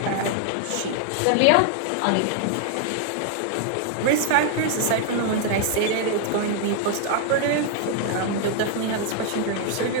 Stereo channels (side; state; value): both; different; correlation 0.00